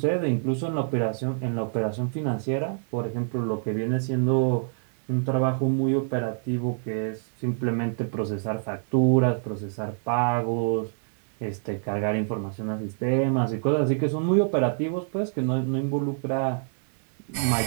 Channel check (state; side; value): silent; left; 61 dB below the other